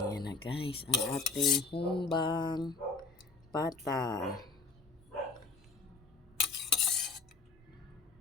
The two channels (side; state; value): right; quieter; 4.0 dB